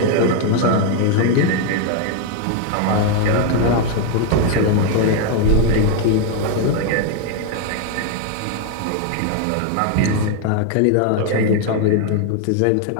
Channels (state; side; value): different; both; correlation 0.00